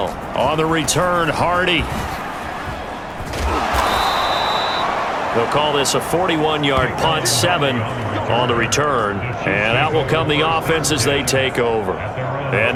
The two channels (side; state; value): both; identical; correlation 1.00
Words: On the return, Hardy. They'll call this a 41-yard punt, 7 on the return, and out will come the offense as they take over. And